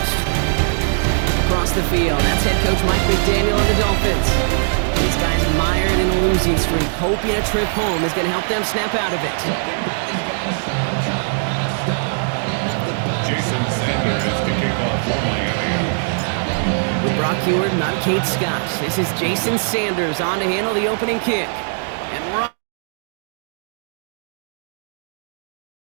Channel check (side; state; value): left; silent; digital silence